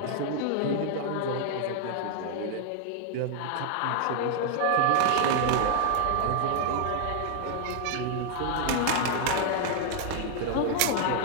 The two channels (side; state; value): both; different; correlation 0.00